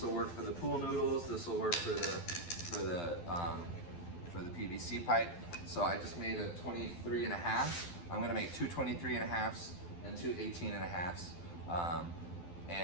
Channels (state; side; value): late; right; 12 ms